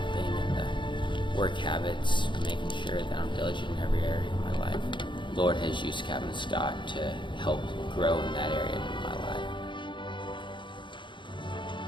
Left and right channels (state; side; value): late; right; 0.23 ms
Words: and the work habits, making sure that I'm diligent in every area of my life. The Lord has used Captain Scott to help grow in that area of my life.